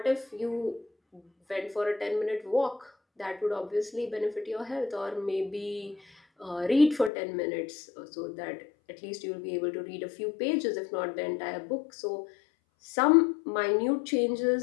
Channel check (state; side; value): drops out; right; at 7.1 s